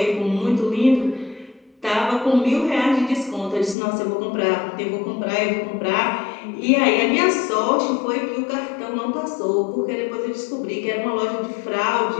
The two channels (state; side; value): drops out; right; at 3.8 s